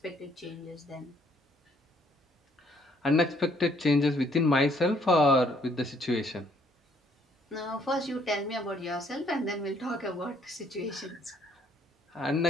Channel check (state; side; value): normal; both; correlation 0.66